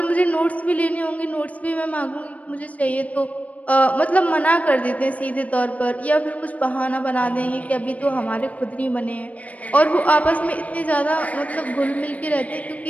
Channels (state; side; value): late; right; 0.068 ms